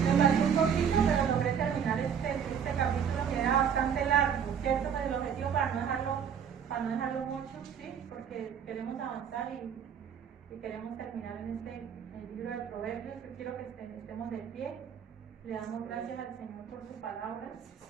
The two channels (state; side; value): quieter; left; 7.7 dB